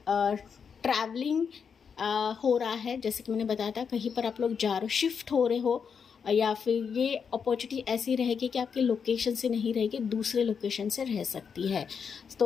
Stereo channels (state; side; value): quieter; right; 6.5 dB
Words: ट्रैवलिंग हो रहा है, जैसे कि मैंने बताया था कहीं पर आप लोग जा रहे हो, शिफ्ट हो रहे हो, या फिर ये अपॉर्चुनिटी ऐसी रहेगी कि आपके लोकेशन से नहीं रहेगी, दूसरे लोकेशन से रह सकती है।